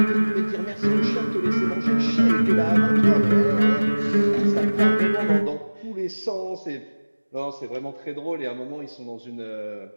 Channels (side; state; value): both; inverted; correlation -1.00